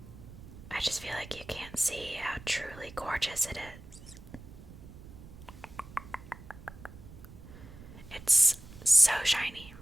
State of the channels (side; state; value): right; noise; rumble, 17 dB below the sound